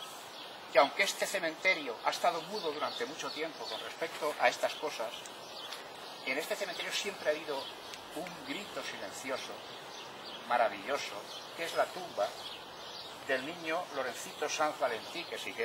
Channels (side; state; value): both; identical; correlation 1.00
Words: que aunque este cementerio ha estado mudo durante mucho tiempo con respecto a estas cosas, en este cementerio siempre ha habido un grito silencioso, maravilloso, que es la tumba del niño Lorencito Sanz Valentí, que si